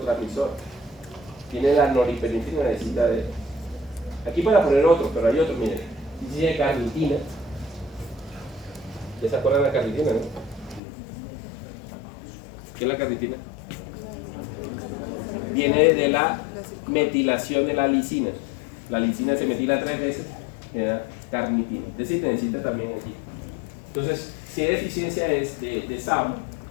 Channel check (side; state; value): right; drops out; at 10.8 s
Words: Tiene la noripinefrina, necesita de... Aquí para poner otro, pero hay otro, miren. Síntesis de carnitina. ¿Ya se acuerdan de la carnitina, no? ¿Qué es la carnitina? Viene de la metilación de la lisina. La lisina se metila 3 veces, genera carnitina. Es decir, necesita también aquí. Entonces, si hay deficiencia de SAM,